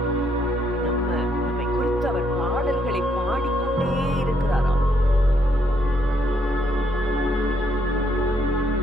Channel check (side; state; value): both; normal; correlation 0.72